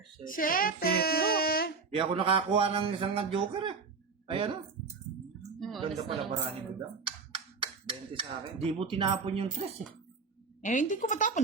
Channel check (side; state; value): left; quieter; 4.8 dB